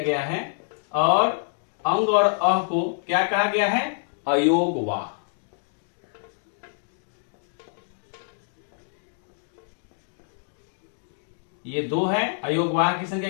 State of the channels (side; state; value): right; silent; digital silence